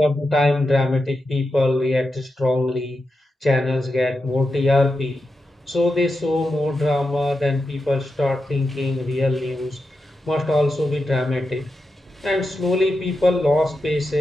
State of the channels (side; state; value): both; normal; correlation 0.88